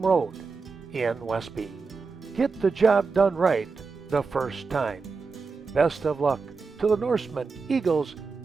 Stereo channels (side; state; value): left; quieter; 4.6 dB